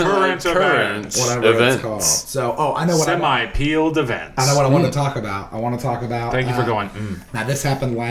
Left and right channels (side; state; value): both; identical; correlation 1.00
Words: events. Whatever it's called. So, I know what Semi-peeled events. I know what I want to talk about. I want to talk about... Thank you for going. Now, this happened